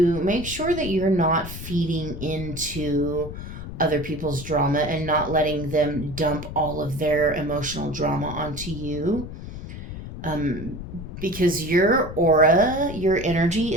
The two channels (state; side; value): noise; left; rumble, 10 dB below the sound